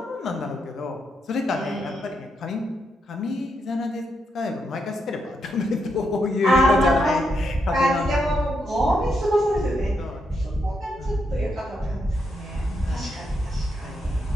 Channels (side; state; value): both; normal; correlation 0.81